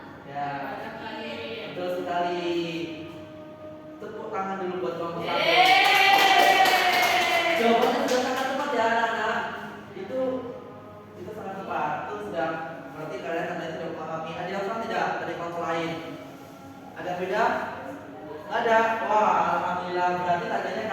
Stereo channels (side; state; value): both; identical; correlation 1.00